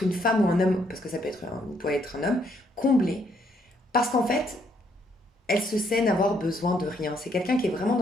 une femme ou un homme, parce que ça peut être un homme, comblé, parce qu'en fait, elle se sait n'avoir besoin de rien. C'est quelqu'un qui est vraiment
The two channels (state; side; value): normal; both; correlation 0.70